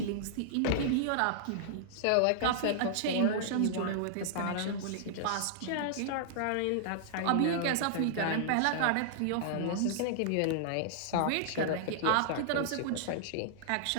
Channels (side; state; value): both; different; correlation -0.01